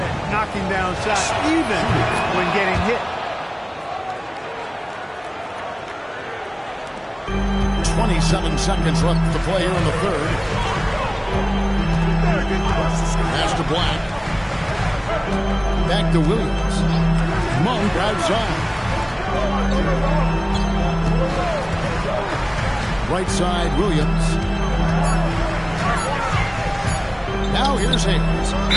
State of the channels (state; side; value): identical; both; correlation 1.00